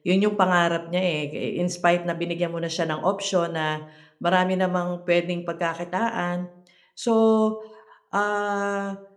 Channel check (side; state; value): both; identical; correlation 1.00